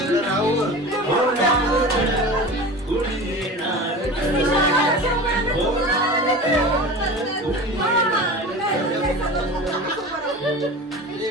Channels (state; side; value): normal; both; correlation 0.33